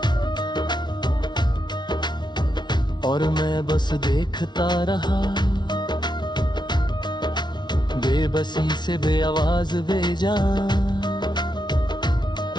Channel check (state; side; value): late; right; 0.21 ms